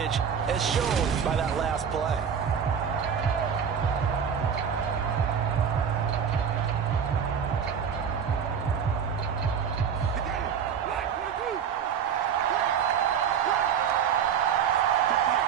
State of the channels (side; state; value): left; quieter; 7.5 dB